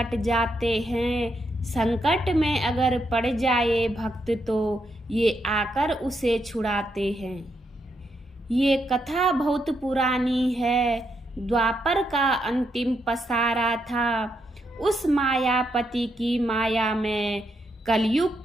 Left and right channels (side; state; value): both; normal; correlation 0.80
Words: जाते हैं। संकट में अगर पड़ जाए भक्त, तो ये आकर उसे छुड़ाते हैं। ये कथा बहुत पुरानी है, द्वापर का अंतिम पसारा था। उस मायापति की माया में